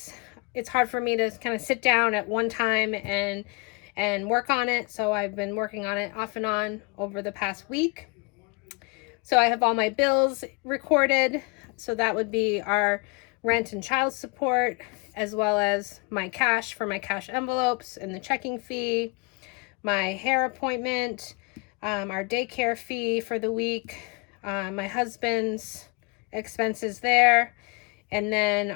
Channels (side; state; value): right; quieter; 31.1 dB